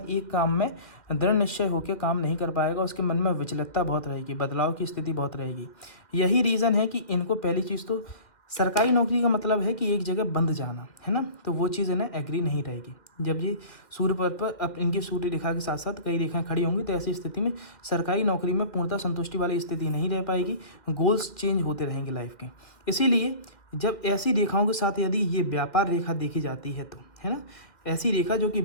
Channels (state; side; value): late; right; 1.9 ms